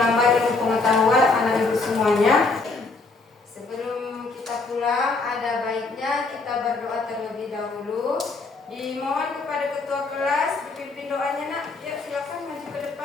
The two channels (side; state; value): right; quieter; 3.7 dB